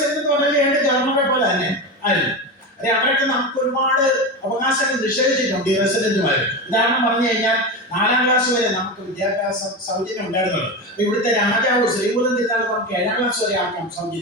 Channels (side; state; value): both; normal; correlation 0.20